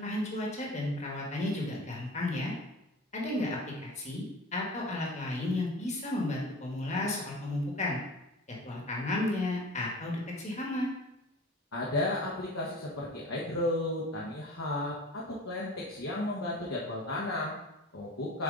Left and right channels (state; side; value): normal; both; correlation 0.38